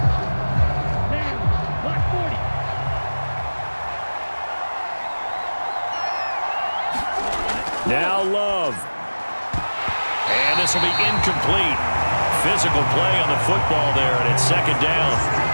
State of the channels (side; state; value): both; inverted; correlation -1.00